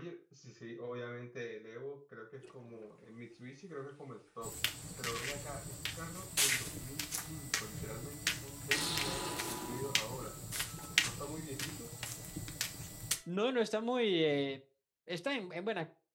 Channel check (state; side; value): identical; both; correlation 1.00